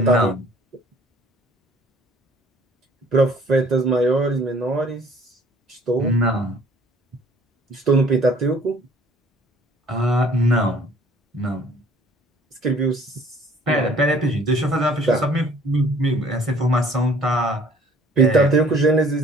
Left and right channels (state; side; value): normal; both; correlation 0.55